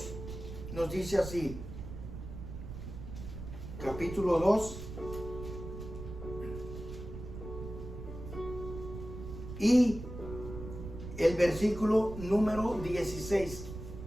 nos dice así. Capítulo 2 y el versículo número 16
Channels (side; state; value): right; noise; rumble, 9 dB below the sound